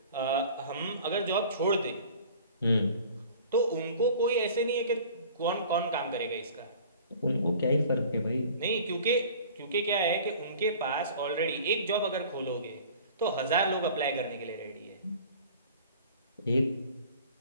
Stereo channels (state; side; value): inverted; both; correlation -0.46